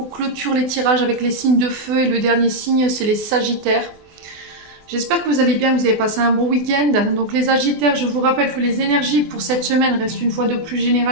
on clôture les tirages avec les signes de feu et le dernier signe c'est les Sagittaires. J'espère que vous allez bien, que vous avez passé un bon week-end. Donc les Sagittaires, je vous rappelle que les énergies pour cette semaine restent une fois de plus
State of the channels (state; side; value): late; left; 24 ms